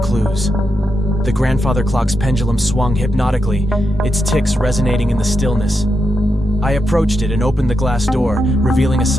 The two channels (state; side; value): normal; both; correlation 0.84